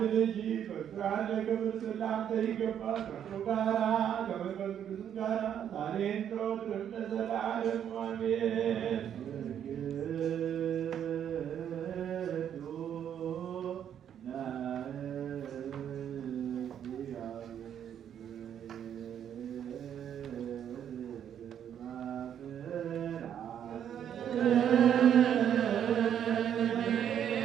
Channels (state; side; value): quieter; left; 9.3 dB